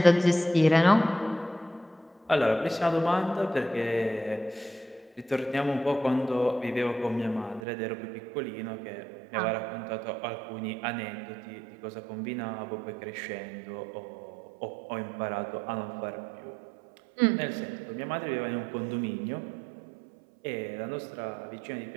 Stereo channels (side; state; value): left; drops out; at 7.6 s